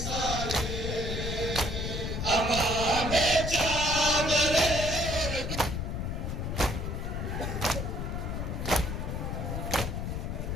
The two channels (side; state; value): left; noise; rumble, 3 dB below the sound